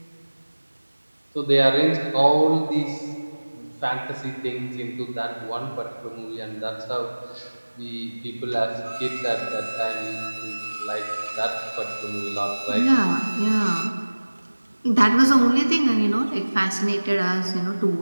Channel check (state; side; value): inverted; both; correlation -1.00